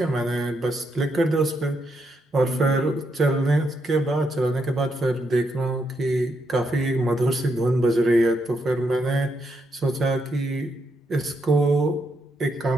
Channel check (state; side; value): normal; both; correlation 0.79